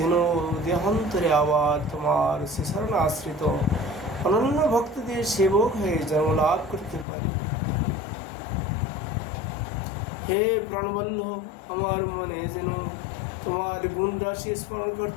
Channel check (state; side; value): drops out; right; at 7.1 s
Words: দেহান্তরে আবার তোমার শরণ আশ্রিত অনন্য ভক্তদের সেবক হয়ে জন্ম লাভ করতে পারি। হে প্রাণবল্লভ, আমার মনে যেন তোমার গুণ রাশি স্মরণ